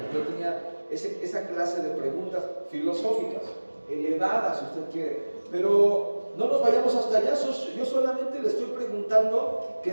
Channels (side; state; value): both; inverted; correlation -1.00